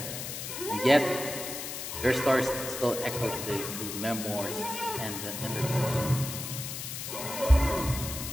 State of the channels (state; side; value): noise; left; hiss, 6 dB below the sound